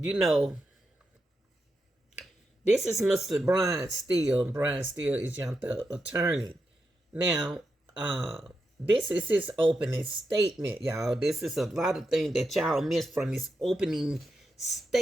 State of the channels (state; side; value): normal; both; correlation 0.86